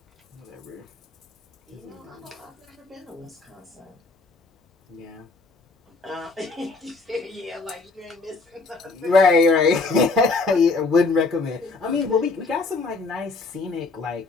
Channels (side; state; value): right; quieter; 4.0 dB